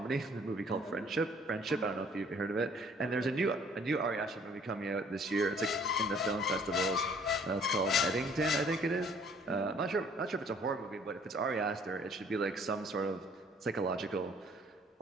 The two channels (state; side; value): normal; both; correlation 0.58